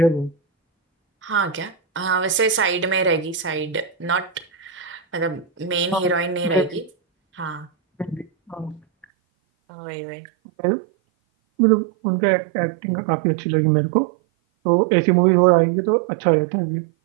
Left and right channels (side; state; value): left; drops out; at 9.1 s